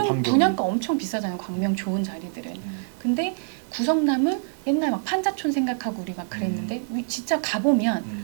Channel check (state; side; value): silent; left; 61 dB below the other